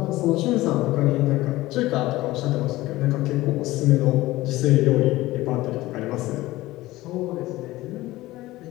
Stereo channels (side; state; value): right; quieter; 17.9 dB